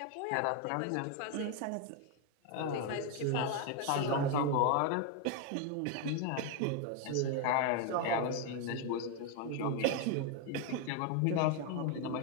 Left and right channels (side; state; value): both; different; correlation 0.01